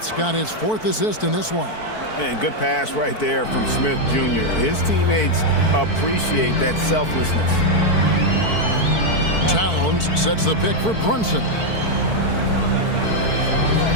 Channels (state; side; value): late; right; 4.5 ms